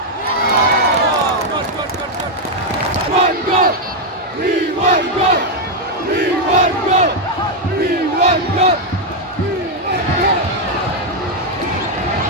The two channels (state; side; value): normal; both; correlation 0.00